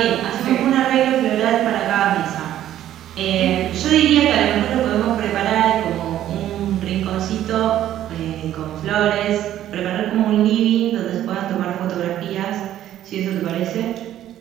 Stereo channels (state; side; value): quieter; left; 12.2 dB